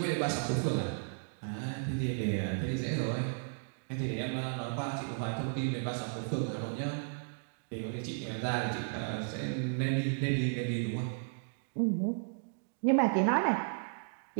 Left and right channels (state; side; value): silent; left; digital silence